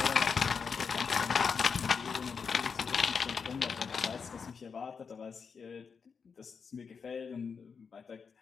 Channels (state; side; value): quieter; right; 5.8 dB